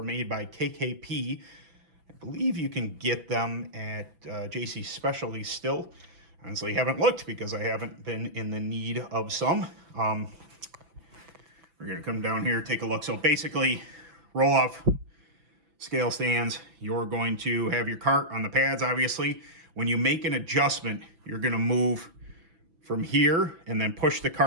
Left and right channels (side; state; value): left; late; 6.0 ms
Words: made by KKP. I believe you can get them at JC Specialty still. Honestly, haven't looked because I haven't been in the need of some. We're going to come down here, take a look. So basically, roll-off scale stands. You're going to have your kart on the pads, obviously. When you make an adjustment, you're going to move from here and then push the